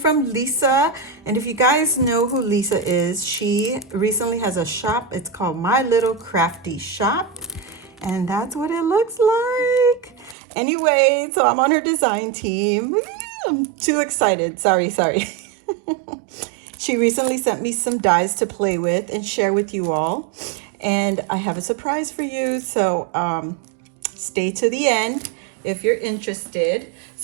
Lisa. And if you guys know who Lisa is, she recently has a shop. It's called MyLittleCraftyShop. And that's what it looks like. Anyway, so I'm on her design team. I'm too excited. Sorry. She recently sent me some dies to play with and share with you all. And I have a surprise for you. So stay to the end if you're interested.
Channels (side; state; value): left; drops out; at 10.4 s